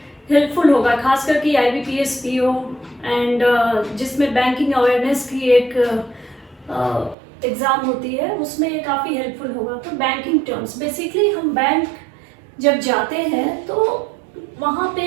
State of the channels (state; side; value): drops out; left; at 7.2 s